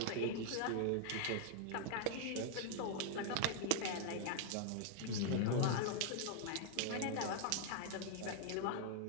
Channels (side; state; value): both; different; correlation 0.00